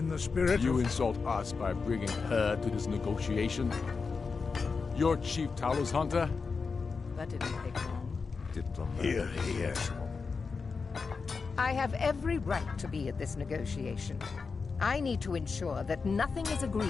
the spirit You of... insult us by bringing her to this negotiation? You're Chief Talos Hunter? That didn't take long. Here he is. I have every right to be at this negotiation. I need to ensure that nothing is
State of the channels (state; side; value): quieter; right; 4.8 dB